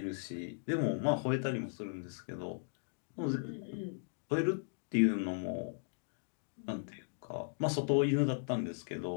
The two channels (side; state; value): right; silent; digital silence